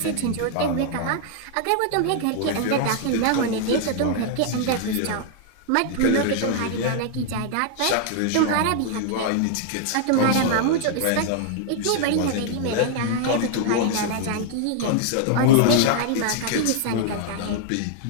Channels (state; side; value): different; both; correlation 0.00